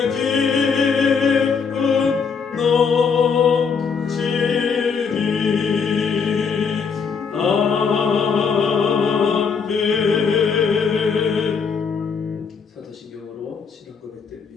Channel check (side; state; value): right; quieter; 5.8 dB